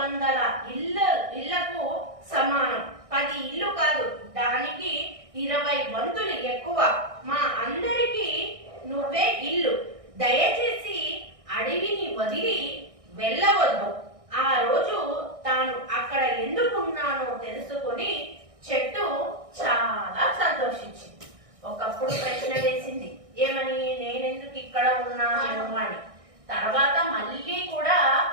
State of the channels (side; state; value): left; late; 1.6 ms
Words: ఇళ్లకు సమానం. 10 ఇల్లు కాదు, దానికి 20 వంతులు ఎక్కువ. మా అందరికీ నువ్వే ఇల్లు. దయచేసి అడవిని వదిలి వెళ్ళవద్దు. ఆ రోజు తాను అక్కడ ఎందుకున్నానో తెలుసుకొని చెట్టు చాలా సంతోషించింది. ఒకప్పుడు ప్రశ్న వేసింది, ఏమని? నేనెందుకు ఇక్కడ ఉన్నాను అని. తర్వాత మళ్ళీ కూడా